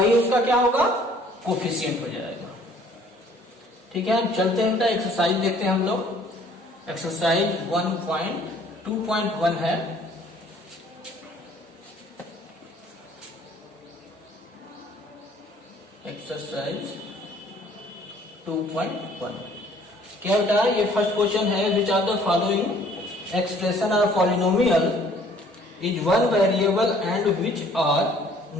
उसका क्या होगा, कोफिशिएंट हो जाएगा। ठीक है, चलते हैं बेटा एक्सरसाइज देखते हैं हम लोग। एक्सरसाइज 1.2.1 है। एक्सरसाइज 2.1 क्या बेटा, ये फर्स्ट क्वेश्चन है, which are the following expression are polynomial is one variable and which are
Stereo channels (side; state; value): both; normal; correlation 0.57